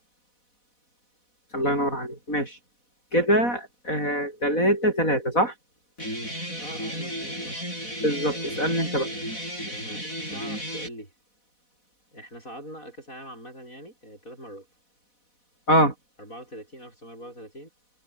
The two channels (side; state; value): right; late; 4.1 ms